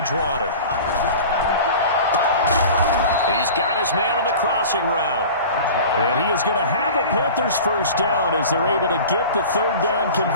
He's got his man on the crossing route. And he is going to have a Panthers first down as they're able to get the third down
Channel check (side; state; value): both; inverted; correlation -0.38